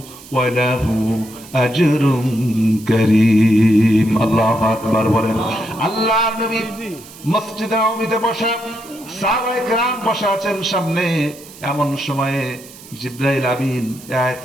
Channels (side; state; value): right; noise; hiss, 19 dB below the sound